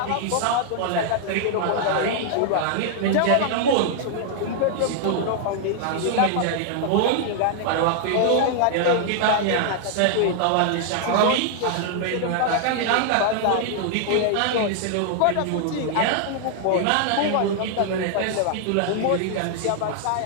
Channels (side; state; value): both; different; correlation -0.01